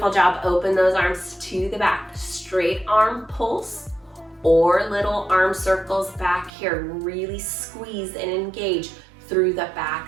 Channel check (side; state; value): left; drops out; at 6.5 s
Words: job. Open those arms to the back. Straight arm pulse or little arm circles back here. Really squeeze and engage through the